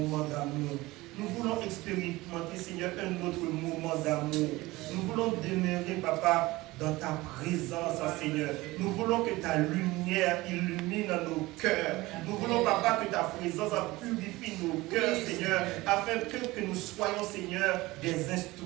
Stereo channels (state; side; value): quieter; left; 20.0 dB